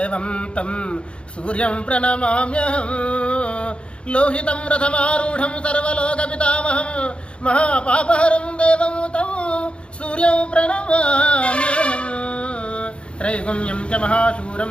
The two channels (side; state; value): right; late; 0.057 ms